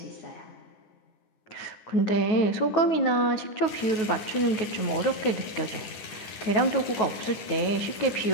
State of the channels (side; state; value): right; late; 9.9 ms